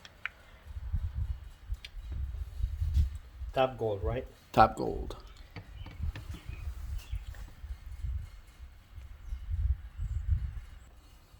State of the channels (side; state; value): both; identical; correlation 1.00